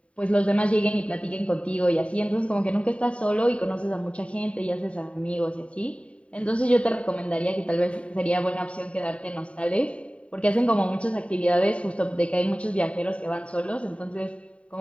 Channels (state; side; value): late; right; 0.063 ms